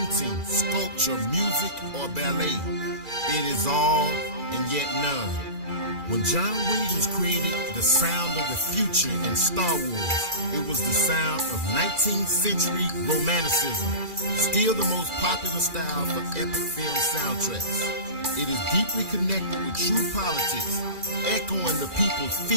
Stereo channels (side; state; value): left; late; 2.4 ms